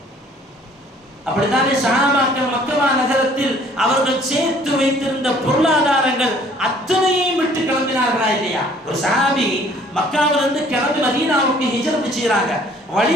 அப்படித்தானே சஹாபாக்கள் மக்கா நகரத்தில் அவர்கள் சேர்த்து வைத்திருந்த பொருளாதாரங்கள் அத்தனையும் விட்டு கிளம்பினார்களா இல்லையா? ஒரு சஹாபி மக்காவிலிருந்து கிளம்பி மதீனாவுக்கு ஹிஜ்ரத் செய்றாங்க.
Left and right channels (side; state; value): both; normal; correlation 0.57